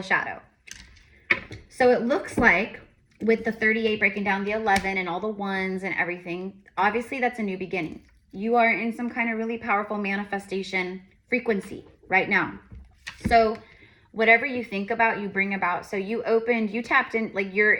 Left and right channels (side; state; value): both; identical; correlation 1.00